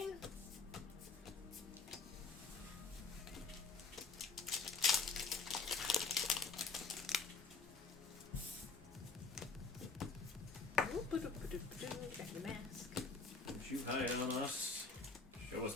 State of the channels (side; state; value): right; quieter; 4.4 dB